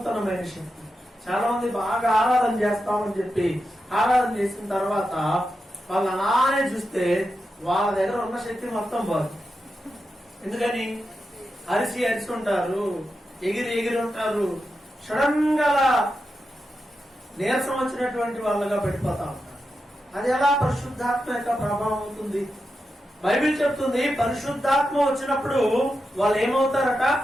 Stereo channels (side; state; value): both; normal; correlation 0.88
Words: శక్తి. చాలా మంది బాగా ఆరాధన చేస్తామని చెప్పి ఆరాధన చేసిన తర్వాత వాళ్ళు అలానే చూస్తే వాళ్ళ దగ్గర ఉన్న శక్తి మొత్తం పోదు. ఎందుకని అరిసి ఉంటారు, ఎగిరి ఉంటారు, సడన్ గా నీరసం వచ్చినటువంటి వాళ్ళగా పడిపోతా ఉంటారు. అది ఎలా పరిశుద్ధాత్మ యొక్క ప్రభావం అవుతుంది? బైబిల్ చెప్తుంది పరిశుద్ధాత్మ వచ్చినప్పుడు వాళ్ళు ఏమవుతారట?